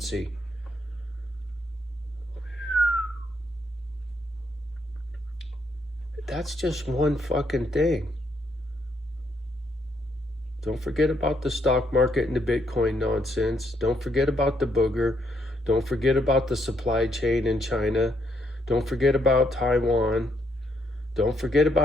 That's just one fucking thing. Don't forget about the stock market and the Bitcoin nonsense. Don't forget about the booger. Don't forget about the supply chain in China. Don't forget about Taiwan. Don't forget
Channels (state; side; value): normal; both; correlation 0.74